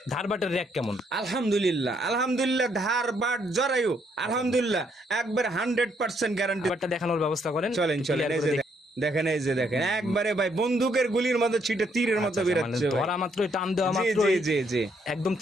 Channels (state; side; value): normal; both; correlation 0.71